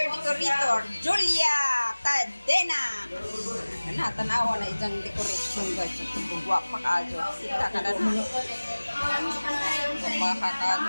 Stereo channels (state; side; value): inverted; both; correlation -1.00